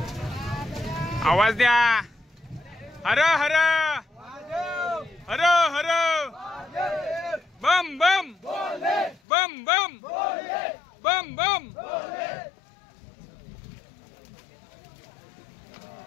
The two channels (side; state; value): right; drops out; at 9.2 s